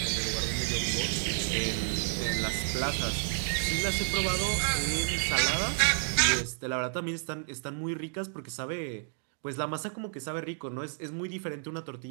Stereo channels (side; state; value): left; silent; digital silence